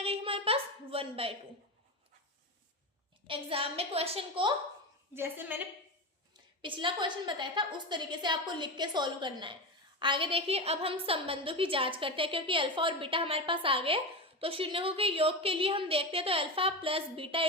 गई हमारे पास 1/2। एग्जाम में क्वेश्चन को जैसे मैंने पिछला क्वेश्चन बताया था उस तरीके से आपको लिख के सॉल्व करना है। आगे देखिए, अब हम संबंधों की जांच करते हैं, क्योंकि अल्फा और बीटा हमारे पास आ गए। तो शून्यकों के योग के लिए हम देखते हैं, तो alpha plus beta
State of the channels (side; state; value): both; normal; correlation 0.21